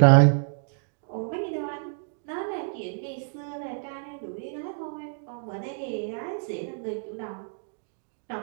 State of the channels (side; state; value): left; silent; digital silence